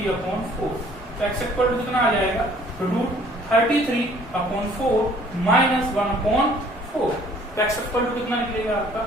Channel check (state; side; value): normal; both; correlation 0.57